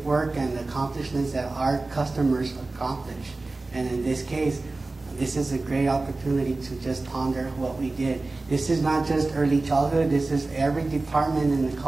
work and the accomplishments that our customers accomplish. And in this case, this is a great opportunity to just ponder what we did. This is not just early childhood, this is every department in the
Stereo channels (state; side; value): quieter; left; 3.3 dB